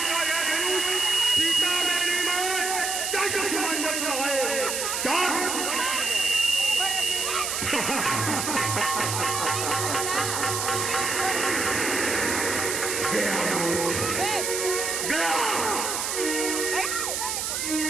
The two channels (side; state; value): right; noise; hiss, 1 dB below the sound